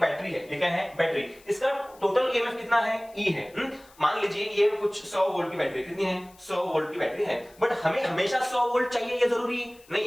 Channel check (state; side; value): noise; left; hiss, 27 dB below the sound